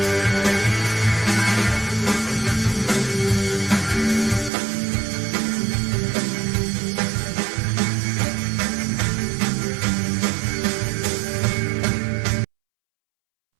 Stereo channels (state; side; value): drops out; left; at 4.5 s